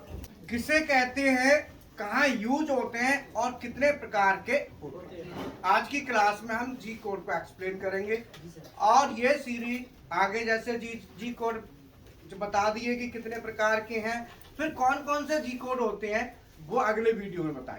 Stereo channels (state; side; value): identical; both; correlation 1.00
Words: किसे कहते हैं, कहाँ यूज होते हैं और कितने प्रकार के होते हैं। आज की क्लास में हम जी कोड को एक्सप्लेन करेंगे और ये सीरीज आगे जैसे जी कोड जो बता दिए कि कितने प्रकार के हैं, फिर कौन कौन से जी कोड होते हैं वो अगले वीडियो में